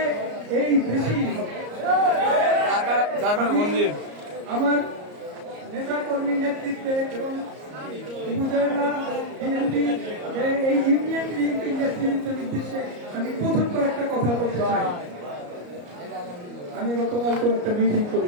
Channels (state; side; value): late; left; 34 ms